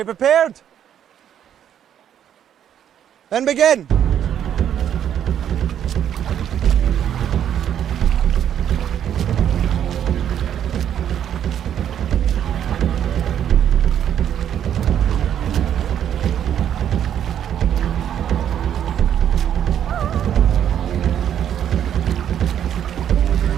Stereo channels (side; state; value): left; quieter; 9.8 dB